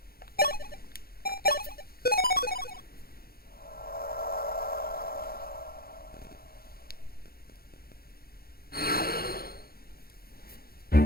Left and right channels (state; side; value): late; right; 0.44 ms